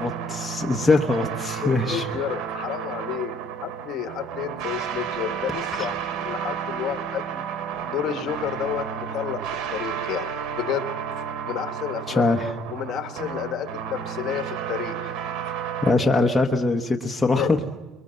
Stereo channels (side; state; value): both; normal; correlation 0.60